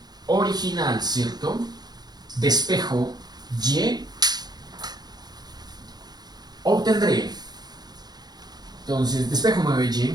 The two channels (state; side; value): late; left; 0.20 ms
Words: original, ¿cierto?, despejo y, obtendré, entonces, despejo 9y,